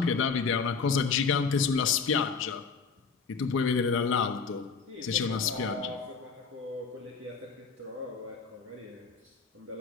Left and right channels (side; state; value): right; quieter; 5.4 dB